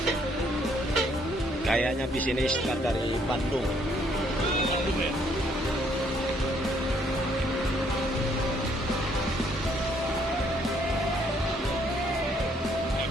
Kayaknya bis ini start dari Bandung.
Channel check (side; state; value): both; normal; correlation 0.67